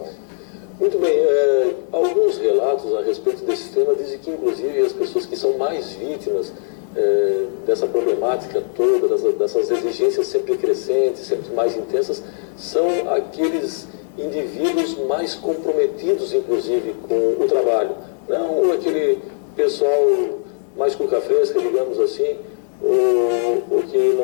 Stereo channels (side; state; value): right; silent; digital silence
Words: Muito bem, alguns relatos a respeito desse tema dizem que, inclusive, as pessoas que são mais vítimas dessa problemática toda, dessas exigências sempre crescentes, sempre mais intensas, são aqueles indivíduos mais comprometidos, inclusive, com o trabalho. Não aquele pessoal mais cuca fresca, digamos assim, ou que